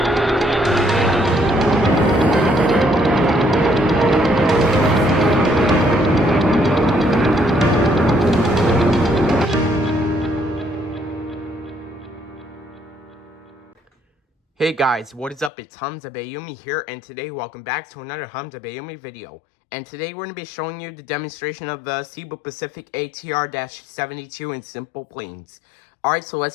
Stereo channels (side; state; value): right; drops out; at 15.5 s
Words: Hey guys, what is up? It's Hamza Bayoumi here, and today welcome back to another Hamza Bayoumi video. And today we're going to be showing you the demonstration of the Cebu Pacific ATR-72 in SimplePlanes. Alright, so